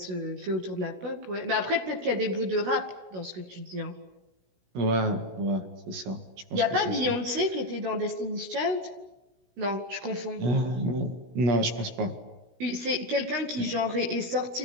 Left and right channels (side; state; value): left; late; 16 ms